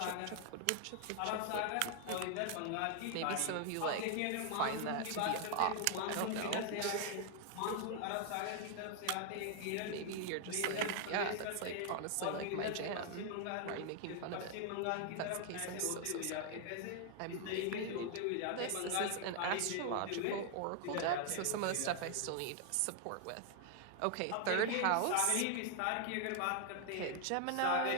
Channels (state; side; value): different; both; correlation 0.00